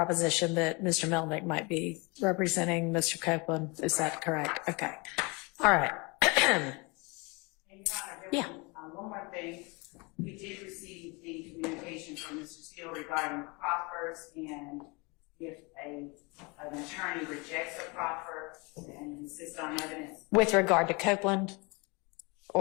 that Mr. Melnick might be representing Mr. Copeland. Is that correct? Okay. All right. Yeah. One more thing. We did receive the communication from Mr. Steele regarding proffers, and if an attorney rejects a proffer and insists on evidence. With regard to Copeland?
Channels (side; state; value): right; quieter; 28.3 dB